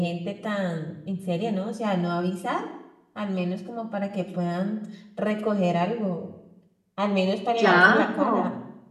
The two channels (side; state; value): both; identical; correlation 1.00